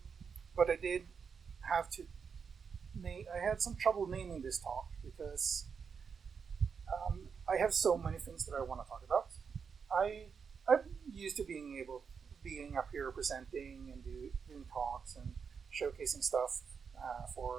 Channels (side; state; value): left; quieter; 6.1 dB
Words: But I did have to I had some trouble naming this talk because I have so many things that I want to talk about. I'm used to being up here presenting and doing talks and showcasing stuff